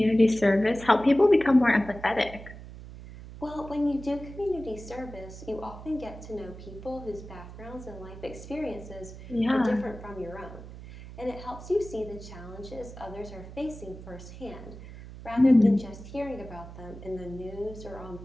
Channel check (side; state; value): right; noise; hum, 14 dB below the sound